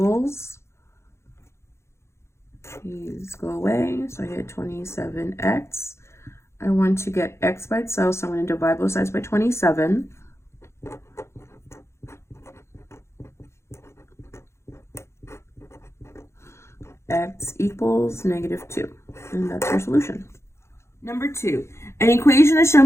these go away, so I get 27x. I want to get x by itself, so I'm going to divide both sides by 27. X equals negative 2, and that's your solution. Number 2, an equation is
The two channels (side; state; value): right; late; 0.13 ms